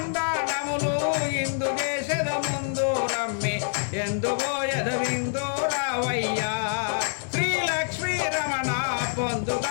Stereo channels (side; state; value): right; silent; digital silence